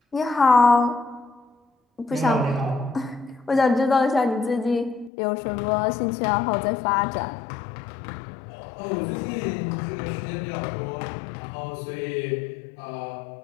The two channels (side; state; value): right; drops out; at 5.1 s